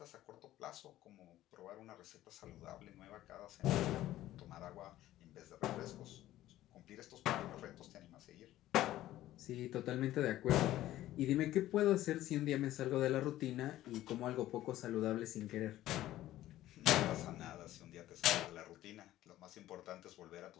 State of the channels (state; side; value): quieter; right; 14.5 dB